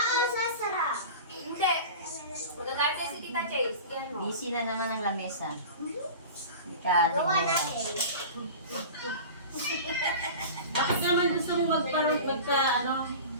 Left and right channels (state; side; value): inverted; both; correlation -0.34